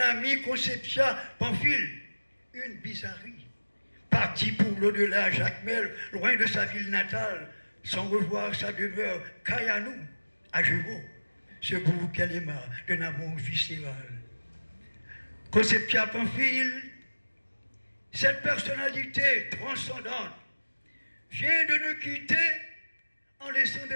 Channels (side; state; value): both; inverted; correlation -1.00